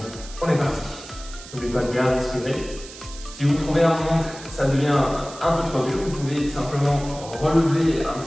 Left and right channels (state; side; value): noise; right; hiss, 16 dB below the sound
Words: On est parti. N'oubliez pas de bien respirer. Si vous trouvez un moment que ça devient un peu trop dur, vous pouvez simplement relever un